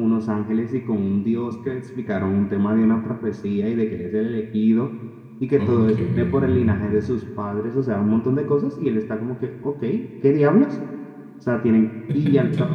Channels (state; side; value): identical; both; correlation 1.00